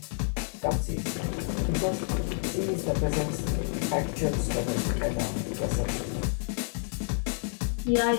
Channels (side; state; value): right; silent; digital silence